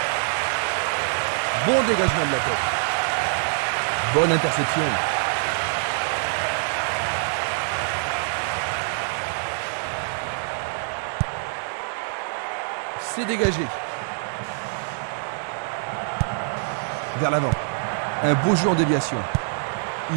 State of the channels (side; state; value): left; silent; digital silence